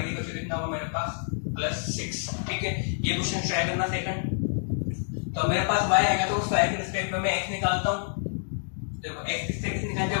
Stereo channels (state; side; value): silent; right; 59 dB below the other